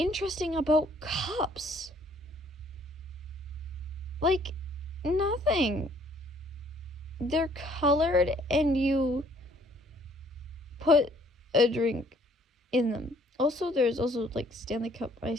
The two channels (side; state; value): both; normal; correlation 0.61